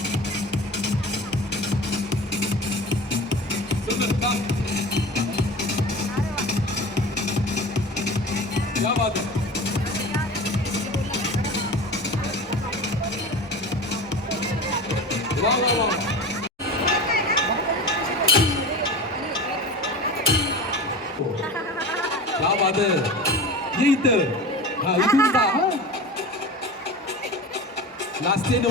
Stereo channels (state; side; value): normal; both; correlation 0.33